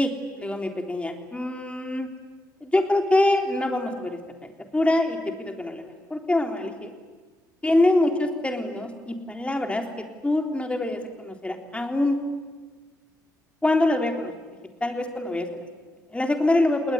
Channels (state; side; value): normal; both; correlation 0.88